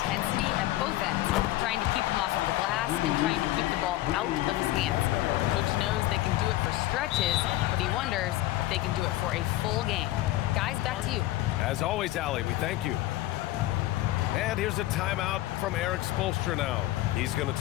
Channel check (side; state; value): right; quieter; 16.2 dB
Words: at both ends, trying to keep him off of the glass and trying to keep the ball out of his hands. Coach knows they can do it for stretches, but he wonders if they can do it for a full game." Guys, back to you. As always, Allie, we thank you. And here's a timeout from Eric Spoelstra now. He's going to